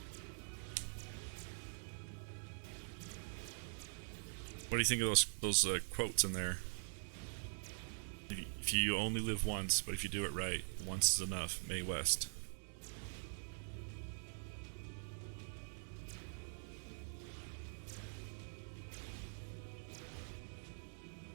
what do you think of those quotes in there? If you only live once, but if you do it right, once is enough. Mae West.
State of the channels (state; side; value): silent; left; digital silence